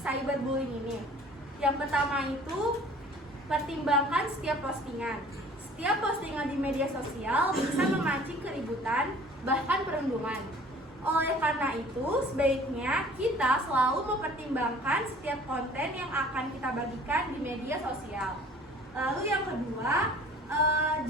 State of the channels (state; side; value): normal; both; correlation 0.50